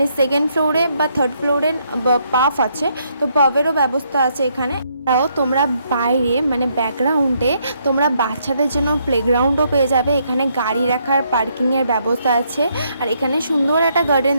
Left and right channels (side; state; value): both; inverted; correlation -0.73